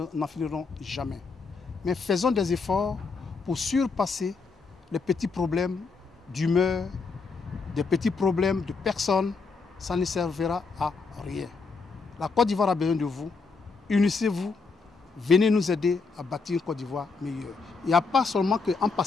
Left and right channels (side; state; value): right; quieter; 4.5 dB